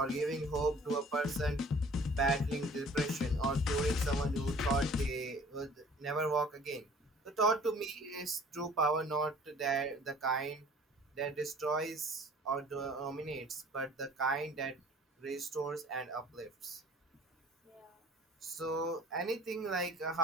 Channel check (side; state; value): both; normal; correlation 0.50